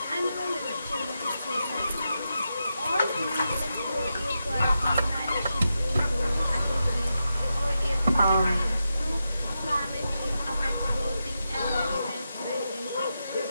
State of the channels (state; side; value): inverted; both; correlation -0.88